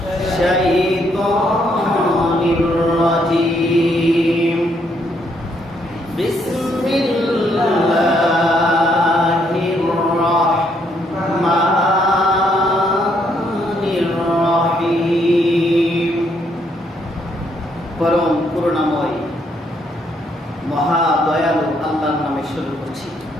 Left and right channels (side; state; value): both; normal; correlation 0.72